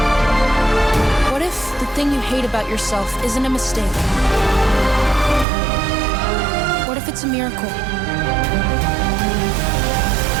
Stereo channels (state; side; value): drops out; left; at 5.5 s